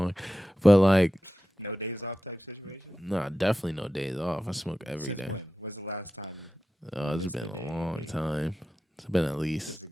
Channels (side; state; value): both; normal; correlation 0.92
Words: But like, nah, definitely no days off. I smoke every day. Oh, it's been a long time. It's been at least